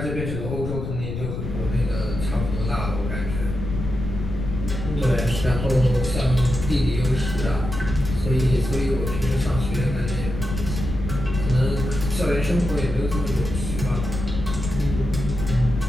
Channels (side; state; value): left; noise; rumble, 5 dB below the sound